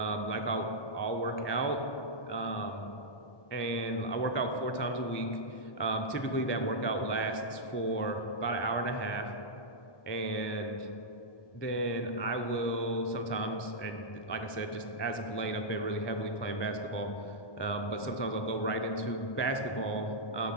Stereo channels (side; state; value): right; late; 1.2 ms